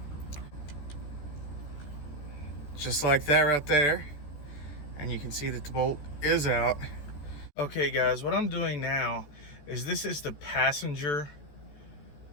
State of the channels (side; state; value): right; late; 14 ms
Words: Just like that right there. And you can see that the bolt is out. Okay guys, what I'm doing now is this is the passenger